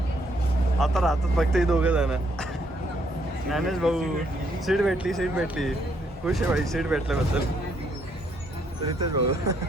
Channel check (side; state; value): both; normal; correlation 0.72